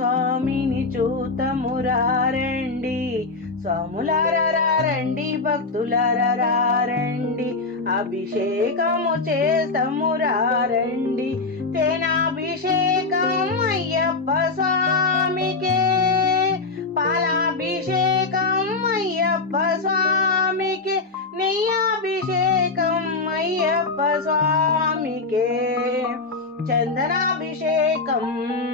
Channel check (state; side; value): quieter; right; 3.7 dB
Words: చూతమురారండి. స్వాములారా రండి, భక్తులారా రండి, అభిషేకము చేతమురారండి. తేనాభిషేకం అయ్యప్ప స్వామికే, పాలాభిషేకం అయ్యప్ప స్వామికే, నెయ్యాభిషేకం అయ్యప్ప స్వామికే, చందనాభిషేకం